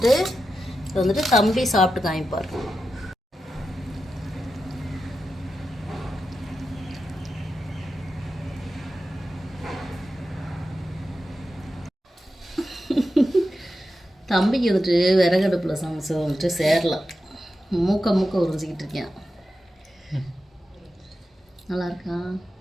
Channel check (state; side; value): normal; both; correlation 0.90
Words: வந்துட்டு தம்பி சாப்பிட்டு காமிப்பார். தம்பிக்கு வந்துட்டு விறகடுப்பில் சமைச்சு வந்துட்டு சேரலாம். மூக்க உறிஞ்சிக்கிட்டு இருக்கேன். நல்லா இருக்கா?